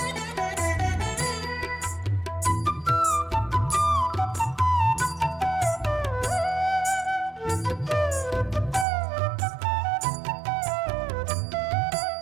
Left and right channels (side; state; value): left; drops out; at 8.8 s